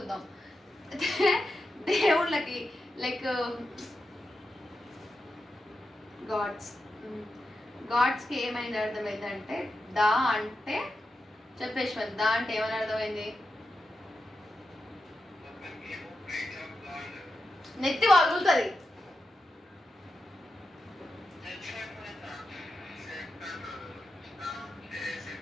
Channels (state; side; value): normal; both; correlation 0.89